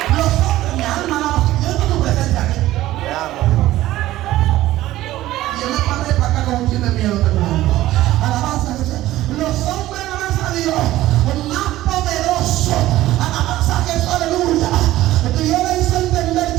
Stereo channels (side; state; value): left; quieter; 15.4 dB